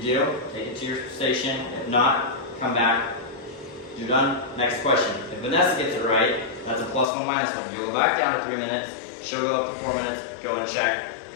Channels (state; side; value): drops out; right; at 7.1 s